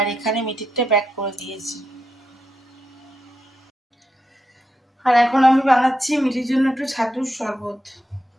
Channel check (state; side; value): normal; both; correlation 0.84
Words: এখানে মিঠিরটা প্যাক করে দিয়েছি। আর এখন আমি বানাচ্ছি মিঠির জন্য একটু ছাতুর শরবত।